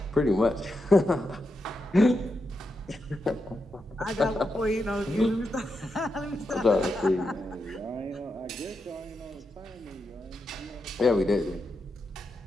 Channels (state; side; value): normal; both; correlation 0.86